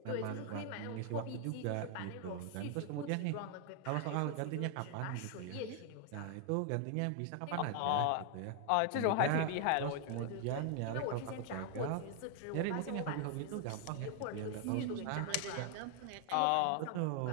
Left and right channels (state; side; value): different; both; correlation 0.00